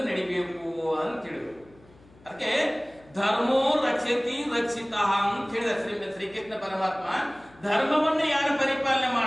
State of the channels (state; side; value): noise; left; hum, 27 dB below the sound